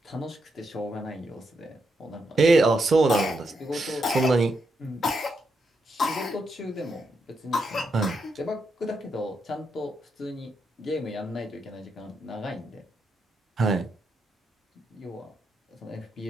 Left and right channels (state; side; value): normal; both; correlation 0.82